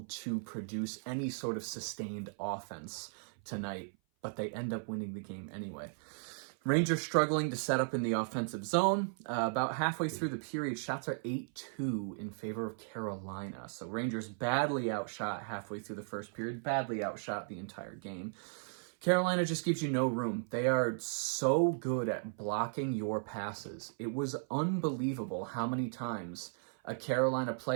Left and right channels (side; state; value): left; silent; 54 dB below the other